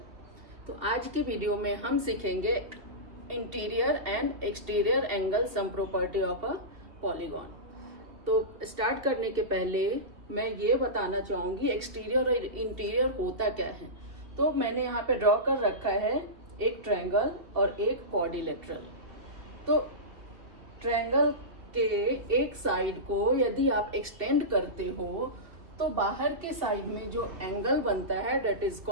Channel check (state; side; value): late; left; 2.5 ms